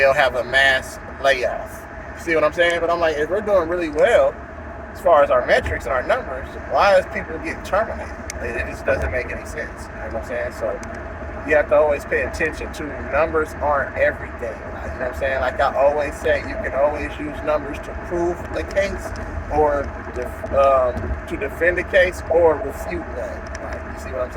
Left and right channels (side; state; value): both; identical; correlation 1.00